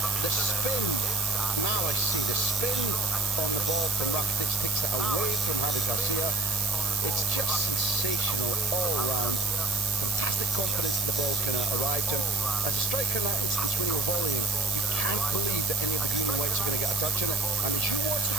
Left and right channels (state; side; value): noise; right; hiss, 2 dB below the sound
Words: the spin, now I see the spin on the ball from Rakitic takes it away from Javi Garcia. It's just sensational all round. Fantastic confidence the ball can arrive to. As a striker now, it's when you're volleying, you can't believe that any of the green and whites are going to get a touch on it. And as you watch